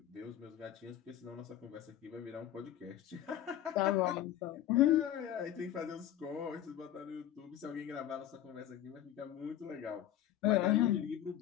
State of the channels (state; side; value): quieter; right; 11.5 dB